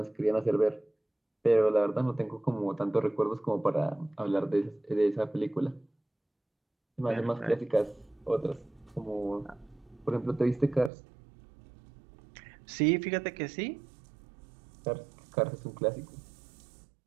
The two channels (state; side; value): drops out; left; at 10.9 s